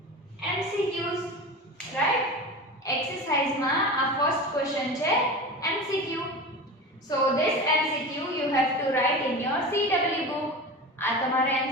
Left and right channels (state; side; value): normal; both; correlation 0.29